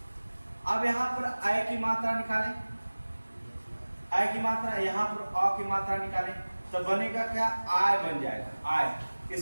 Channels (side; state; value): both; inverted; correlation -1.00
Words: अब यहां पर आय की मात्रा निकालें, आय की मात्रा, यहां पर अ की मात्रा निकालें तो बनेगा क्या, आय बन जाएगा आय।